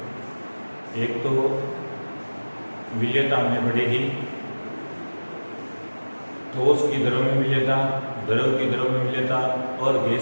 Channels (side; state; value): both; inverted; correlation -1.00